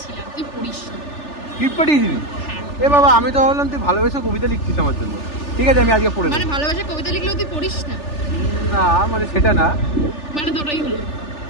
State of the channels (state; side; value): late; right; 3.4 ms